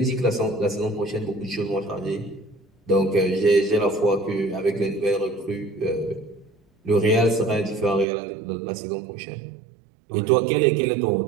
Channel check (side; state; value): left; drops out; at 8.1 s